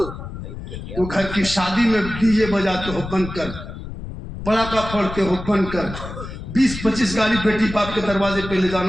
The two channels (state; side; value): noise; left; rumble, 10 dB below the sound